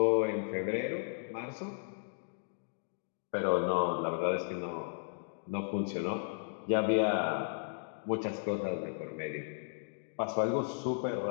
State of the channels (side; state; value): right; silent; digital silence